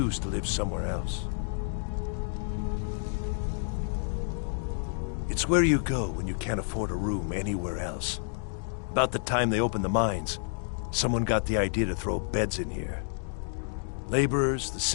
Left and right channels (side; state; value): right; silent; digital silence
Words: to live somewhere else. It's where you go when you can't afford a room anywhere else. About the time they opened the mines, someone got the idea to throw beds in here. Laborers, the